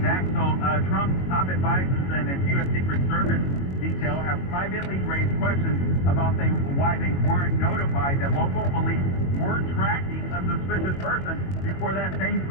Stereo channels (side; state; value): right; late; 22 ms